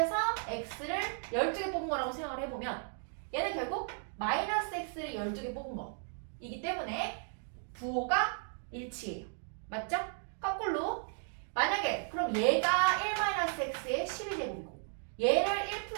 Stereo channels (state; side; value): silent; left; 54 dB below the other